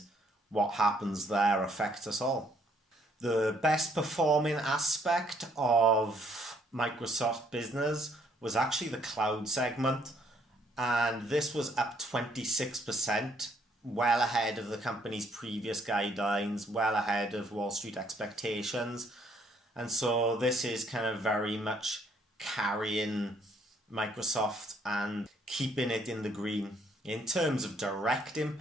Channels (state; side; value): normal; both; correlation 0.67